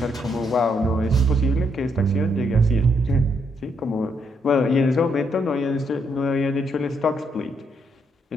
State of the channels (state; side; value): normal; both; correlation 0.75